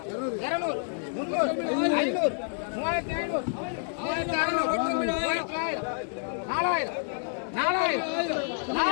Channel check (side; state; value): right; silent; digital silence